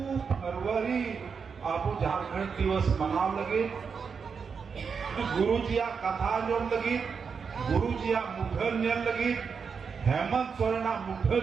फरवरी आबो झारखंड दिवस मनाव लगे, गुरुजिया कथा आंजोम लगी, गुरुजिया मुठन नेल लगी, हेमंत सोरेना मुठन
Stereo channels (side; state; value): left; quieter; 5.9 dB